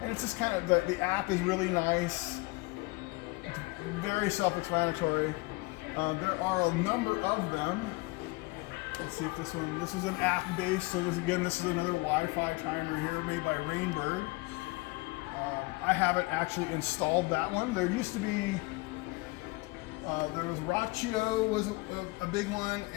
it's just kind of, the app is really nice, very self-explanatory. There are a number of them. Let's see if this is an app based, so this is another Wi-Fi timer here made by Rainbird. I haven't actually installed that one. There used to be, there was Rachio was a big one,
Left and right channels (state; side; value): quieter; right; 24.5 dB